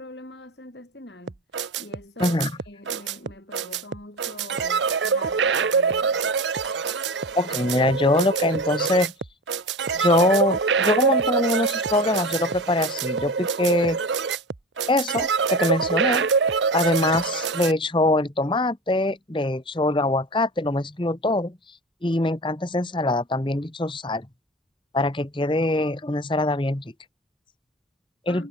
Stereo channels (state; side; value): normal; both; correlation 0.30